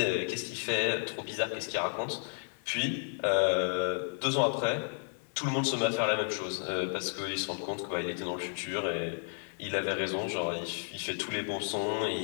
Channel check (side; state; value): right; silent; 56 dB below the other